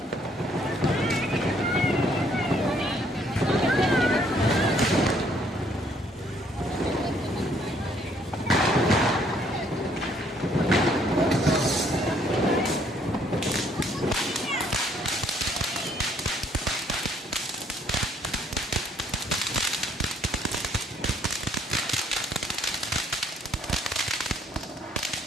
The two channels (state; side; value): normal; both; correlation 0.65